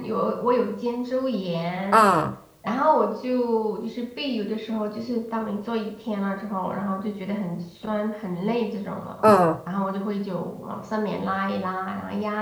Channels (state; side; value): identical; both; correlation 1.00